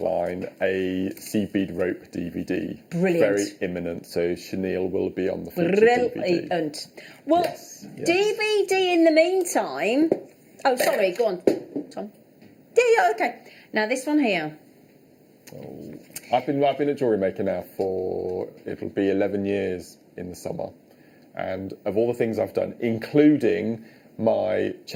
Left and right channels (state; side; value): identical; both; correlation 1.00